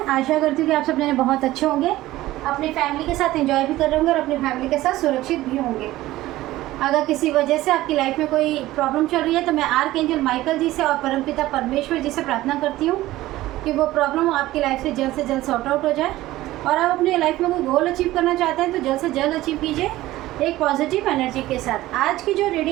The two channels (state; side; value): quieter; left; 16.5 dB